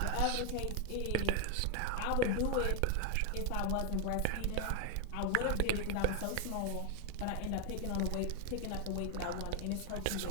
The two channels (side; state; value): both; different; correlation 0.00